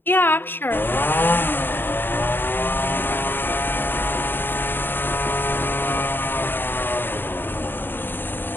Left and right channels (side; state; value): right; late; 0.096 ms